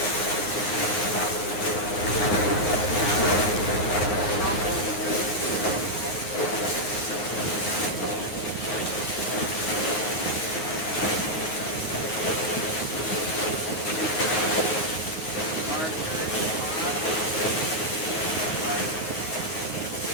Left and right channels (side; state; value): right; late; 9.6 ms